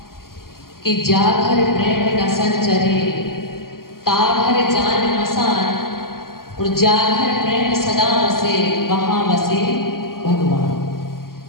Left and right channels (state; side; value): late; right; 0.92 ms